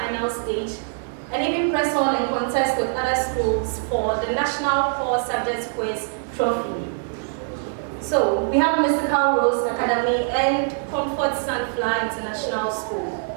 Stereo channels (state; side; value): silent; left; digital silence